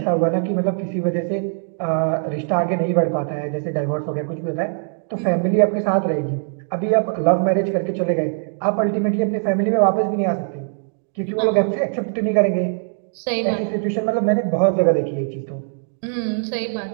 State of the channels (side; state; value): left; silent; digital silence